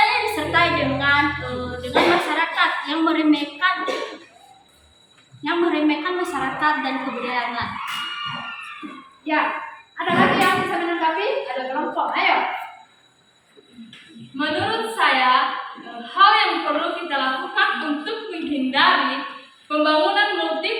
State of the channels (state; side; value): identical; both; correlation 1.00